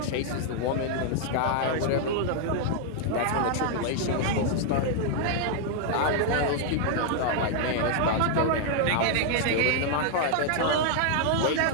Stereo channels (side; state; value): both; different; correlation 0.00